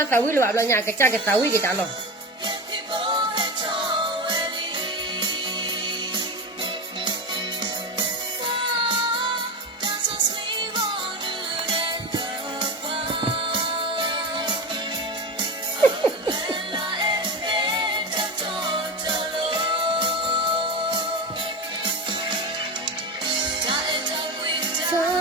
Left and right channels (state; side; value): normal; both; correlation 0.22